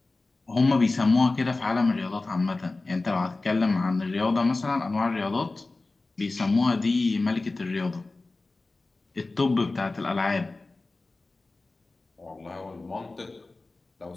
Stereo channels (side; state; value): right; quieter; 3.3 dB